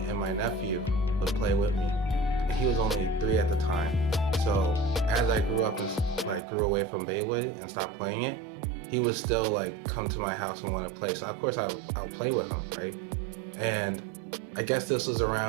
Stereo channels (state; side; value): drops out; left; at 6.4 s